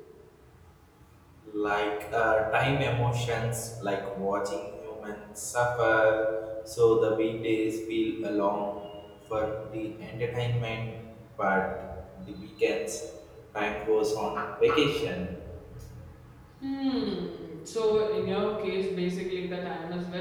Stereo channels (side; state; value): both; identical; correlation 1.00